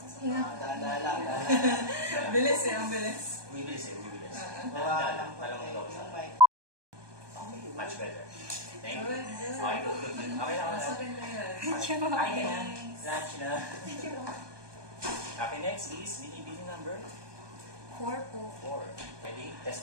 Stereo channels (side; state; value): left; late; 1.2 ms